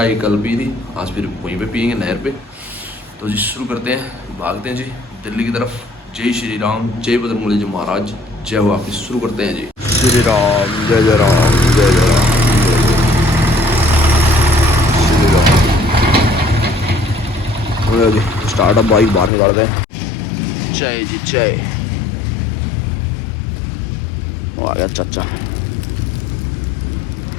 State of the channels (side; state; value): right; drops out; at 19.3 s